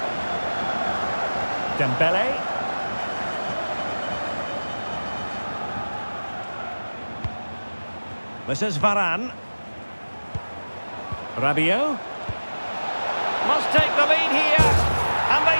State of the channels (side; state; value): both; inverted; correlation -1.00